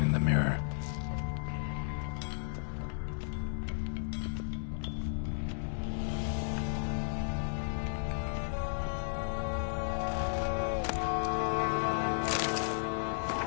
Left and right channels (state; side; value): silent; right; digital silence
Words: in the mirror.